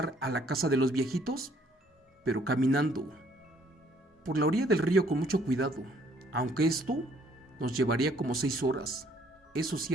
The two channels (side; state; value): both; normal; correlation 0.63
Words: a la casa de los viejitos, pero caminando por la orilla del río con mucho cuidado, aunque esto nos llevaría como 6 horas. Eso sí